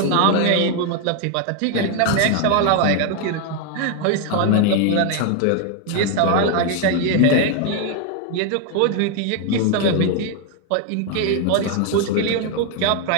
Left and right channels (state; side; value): different; both; correlation 0.01